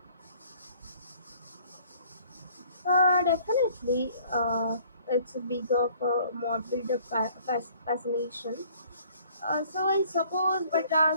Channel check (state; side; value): inverted; both; correlation -0.57